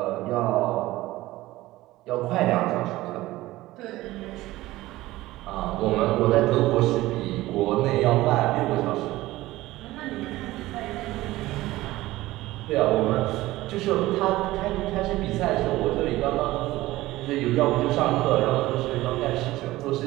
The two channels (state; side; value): quieter; left; 17.5 dB